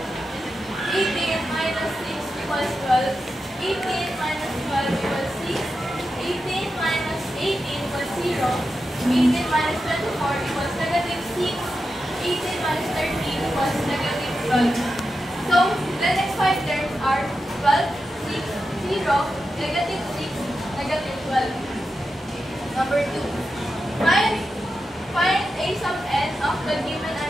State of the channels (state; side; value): normal; both; correlation 0.89